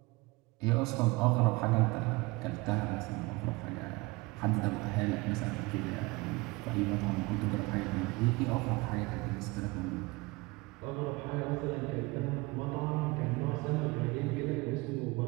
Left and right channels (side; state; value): left; quieter; 23.7 dB